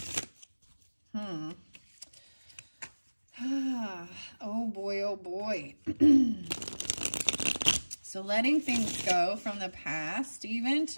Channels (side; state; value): both; inverted; correlation -1.00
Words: Oh boy, oh boy. So letting things go from the past even